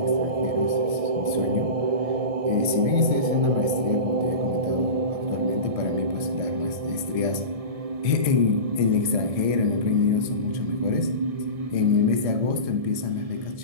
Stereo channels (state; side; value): late; left; 1.7 ms